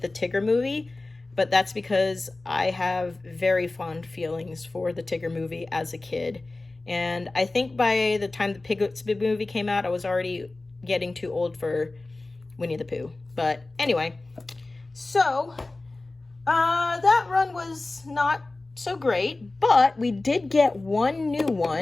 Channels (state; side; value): quieter; right; 3.1 dB